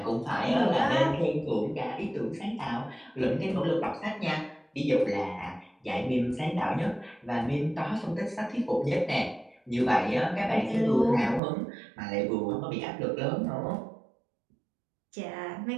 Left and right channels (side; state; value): left; drops out; at 11.4 s